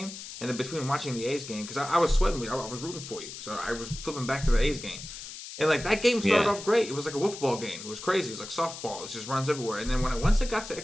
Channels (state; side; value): noise; left; hiss, 11 dB below the sound